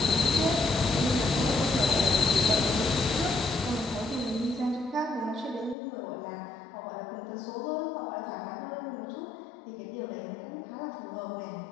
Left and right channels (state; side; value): drops out; right; at 5.8 s